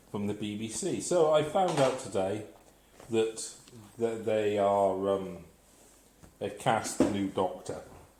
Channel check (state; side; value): identical; both; correlation 1.00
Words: from the BBC. So I found out today that they are they've cast the new Doctor